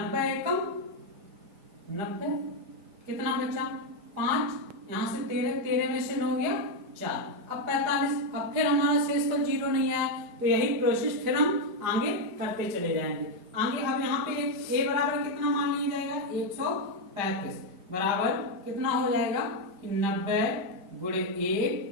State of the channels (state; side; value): late; left; 5.0 ms